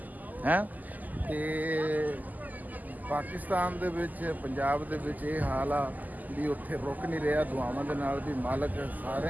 ਹੈ। ਤੇ ਪਾਕਿਸਤਾਨ ਦੇ ਵਿੱਚ ਪੰਜਾਬ ਦੇ ਵਿੱਚ ਇਹ ਹਾਲ ਆ ਵੀ ਉੱਥੇ ਰੁਕ ਨਹੀਂ ਰਿਹਾ। ਦੁਆਵਾਂ ਦੇ ਨਾਲ ਵੀ ਮਾਲਕ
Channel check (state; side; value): late; left; 0.082 ms